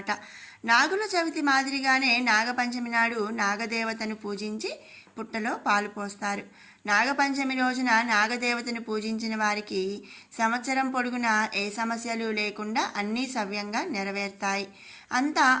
నాగుల చవితి మాదిరిగానే నాగపంచమి నాడు నాగదేవతను పూజించి పుట్టలో పాలు పోస్తారు. నాగపంచమి రోజున నాగదేవతను పూజించిన వారికి సంవత్సరం పొడుగునా ఏ సమస్యలు లేకుండా అన్నీ సవ్యంగా నెరవేరుతాయి. అంతా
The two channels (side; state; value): both; identical; correlation 1.00